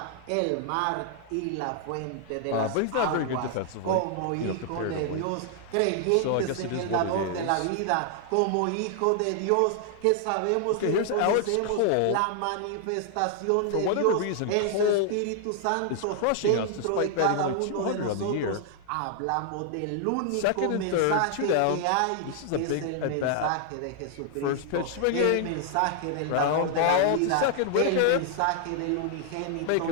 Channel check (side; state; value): both; different; correlation 0.00